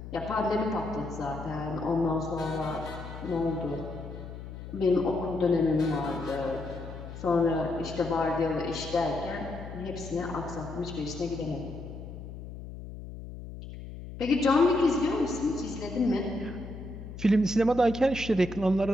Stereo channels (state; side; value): noise; left; hum, 11 dB below the sound